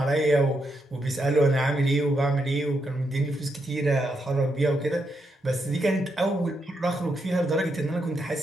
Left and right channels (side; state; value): both; normal; correlation 0.81